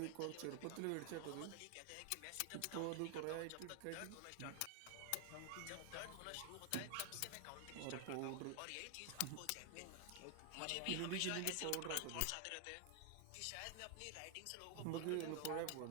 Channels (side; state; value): both; different; correlation 0.00